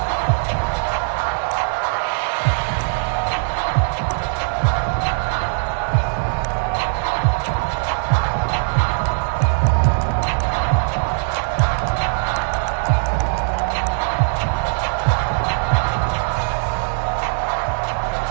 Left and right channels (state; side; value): silent; left; digital silence